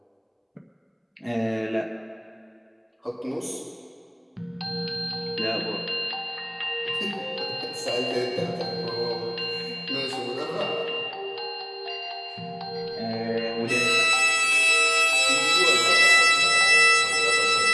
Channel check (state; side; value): identical; both; correlation 1.00